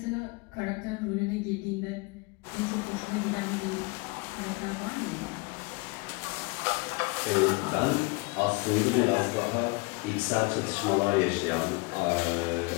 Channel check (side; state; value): right; quieter; 26.6 dB